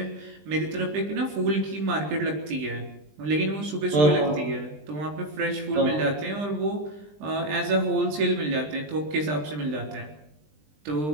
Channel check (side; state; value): left; late; 20 ms